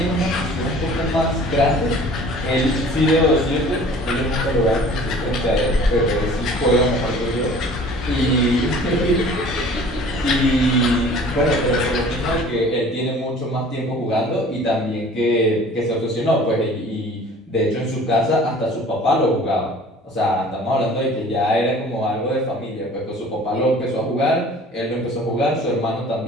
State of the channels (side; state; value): both; normal; correlation 0.48